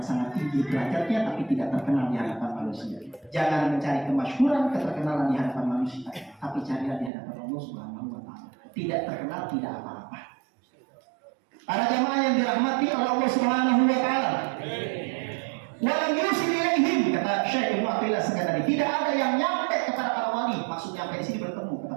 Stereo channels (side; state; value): left; drops out; at 7.1 s